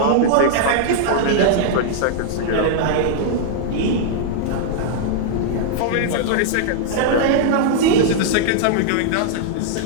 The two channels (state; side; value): different; both; correlation -0.01